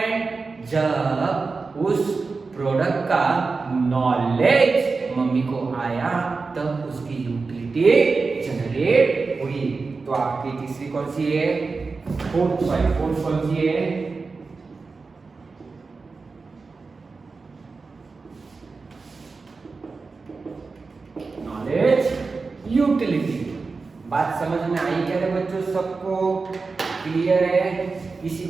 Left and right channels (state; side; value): quieter; left; 4.3 dB